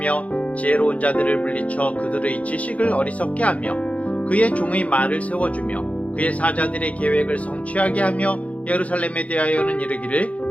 지혜로운 자들을 물리쳐 그들의 지식을 어리석게 하며 그의 종의 말을 세워주며 그의 사자들의 계획을 성취하게 하며 예루살렘에 대하여는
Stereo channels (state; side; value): late; right; 0.066 ms